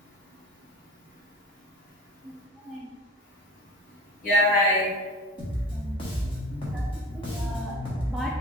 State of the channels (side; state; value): both; normal; correlation 0.38